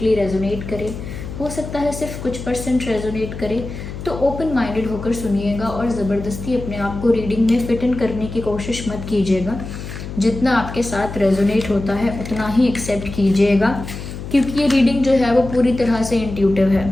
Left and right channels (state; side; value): noise; left; hum, 9 dB below the sound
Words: रेजोनेट करे, हो सकता है सिर्फ कुछ % रेजोनेट करे। तो ओपन माइंडेड होकर सुनिएगा और ज़बरदस्ती अपने आप को रीडिंग में फिट इन करने की कोशिश मत कीजिएगा। जितना आपके साथ रेजोनेट होता है उतना ही एक्सेप्ट कीजिएगा, क्योंकि ये रीडिंग जो है वो पूरी तरह से इंट्यूटिव